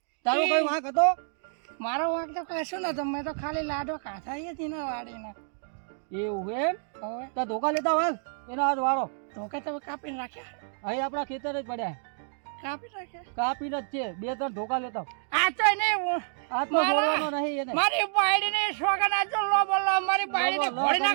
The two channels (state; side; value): silent; left; digital silence